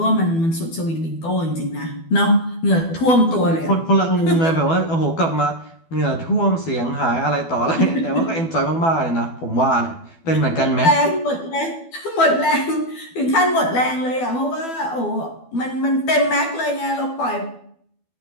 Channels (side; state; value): right; late; 12 ms